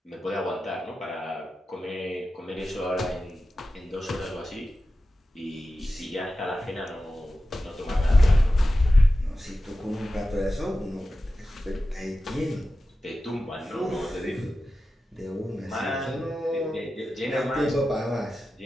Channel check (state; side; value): normal; both; correlation 0.93